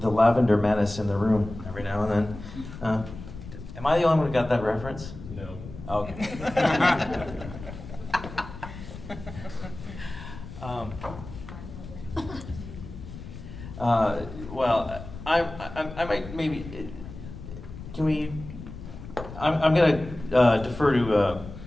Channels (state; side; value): noise; left; rumble, 12 dB below the sound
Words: The lavender menace in the room every now and then. Am I the only one who got that reference? No. Okay. Well, I might maybe. Can we? I'm going to defer to